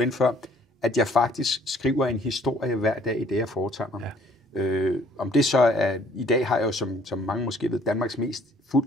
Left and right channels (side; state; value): both; normal; correlation 0.59